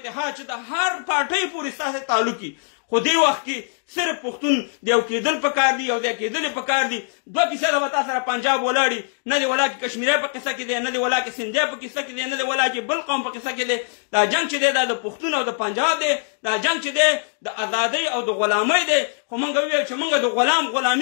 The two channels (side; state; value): right; silent; digital silence